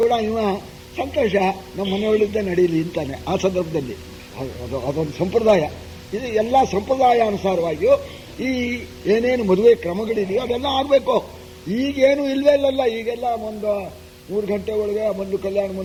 ಕೂಡ ಇವ ಸಂತೋಷ, ನಮ್ಮ ಮನೆಯೊಳಗಿದ್ದ ನಡೀಲಿ ಅಂತಾನೆ ಆ ಸಂದರ್ಭದಲ್ಲಿ. ಅದೊಂದು ಸಂಪ್ರದಾಯ. ಇದು ಎಲ್ಲ ಸಂಪ್ರದಾಯಾನುಸಾರವಾಗಿಯೂ ಈ ಏನೇನು ಮದುವೆ ಕ್ರಮಗಳಿದೆಯೋ ಅದೆಲ್ಲ ಆಗಬೇಕು. ಈಗೇನು ಇಲ್ವೇ ಇಲ್ಲಲ್ಲ. ಈಗೆಲ್ಲ ಒಂದು 3 ಗಂಟೆ ಒಳಗೆ ಬಂದು ಕಲ್ಯಾಣ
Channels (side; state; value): both; identical; correlation 1.00